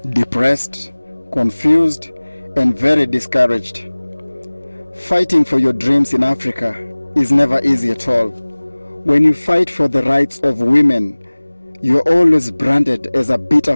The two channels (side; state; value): both; inverted; correlation -1.00